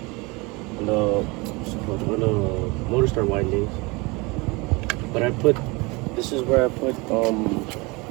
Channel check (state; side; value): quieter; left; 26.0 dB